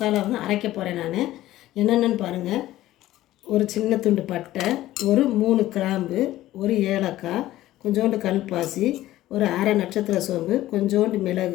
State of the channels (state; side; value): quieter; right; 15.1 dB